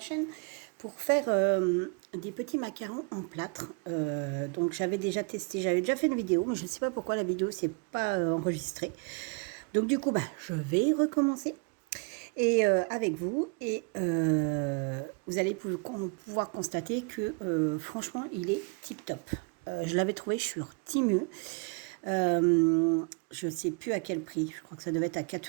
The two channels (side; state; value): left; quieter; 34.4 dB